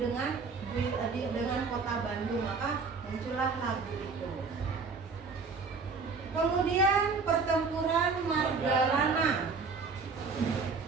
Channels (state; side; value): quieter; left; 4.7 dB